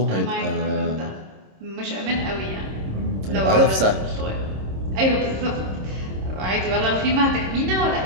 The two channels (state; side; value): late; left; 26 ms